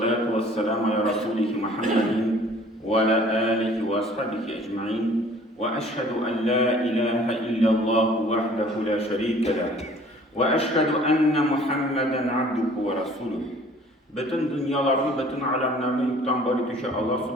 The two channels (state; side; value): normal; both; correlation 0.52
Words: vesselamu ala Resulih Muhammedin ve ala alihi ve ashabihi ecma'in. Ve eşhedü en la ilahe illallah vahdehu la şerike leh. Ve eşhedü enne Muhammeden abduhu ve resuluh. Bütün dünyalarını, bütün alemlerini yoktan bari düşe Allah